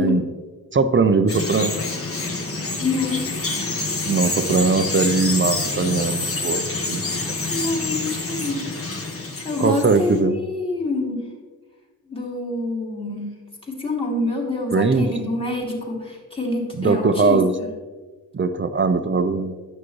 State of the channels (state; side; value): normal; both; correlation 0.32